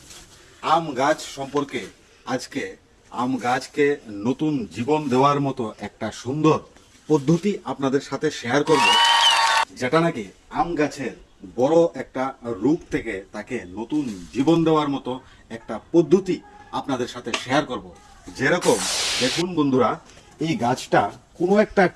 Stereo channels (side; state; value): both; identical; correlation 1.00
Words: আম গাছ সম্পর্কে আজকে আম গাছকে নতুন জীবন দেওয়ার মতো একটা সুন্দর পদ্ধতি আপনাদের সাথে শেয়ার করব, যেটা নাকি আম গাছের বড় একটা রূপ থেকে তাকে নতুন জীবন দেওয়ার মতো একটা পদ্ধতি আপনাদের সাথে শেয়ার করব। যেরকম দেখুন বন্ধুরা, এই গাছটা কোনো একটা